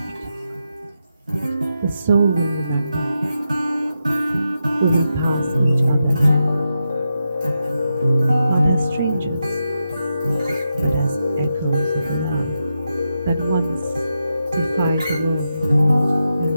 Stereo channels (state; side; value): inverted; both; correlation -0.87